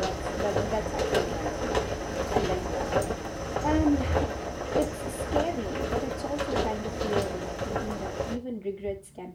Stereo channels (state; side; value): identical; both; correlation 1.00